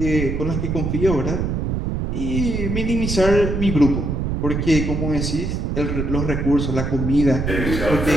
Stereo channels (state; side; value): noise; right; rumble, 1 dB below the sound